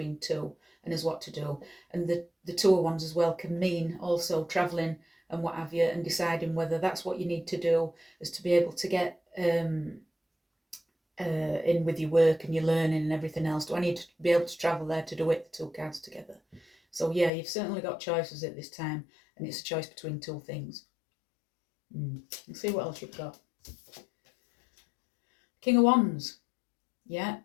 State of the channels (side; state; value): right; drops out; at 17.3 s